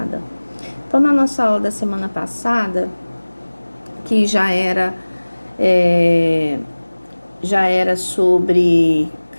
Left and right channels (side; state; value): both; inverted; correlation -1.00